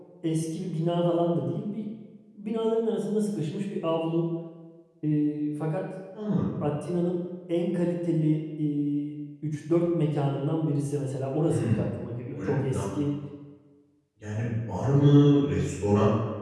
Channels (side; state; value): both; identical; correlation 1.00